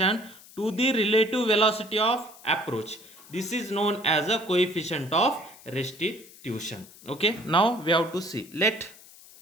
to the relative velocity of approach. This is known as a coefficient of restitution. Okay, now we have to see, let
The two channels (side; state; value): left; noise; hiss, 21 dB below the sound